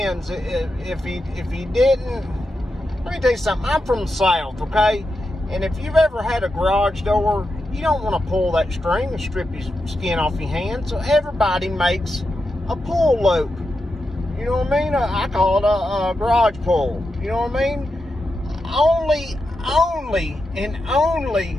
if he didn't. Let me tell you something. I'm from the South, okay? And if you've ever had a garage door, you don't want to pull that string and strip your skin off your hand. So everybody makes a pull loop. You know what I mean? I call it a garage pull. You know what I mean? Only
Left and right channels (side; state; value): both; normal; correlation 0.88